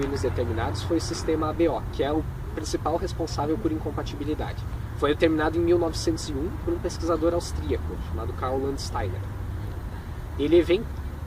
determinados foi o sistema ABO, que é o principal responsável por incompatibilidade. Foi determinado em 1901 por um pesquisador austríaco chamado Karl Landsteiner.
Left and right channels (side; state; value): both; identical; correlation 1.00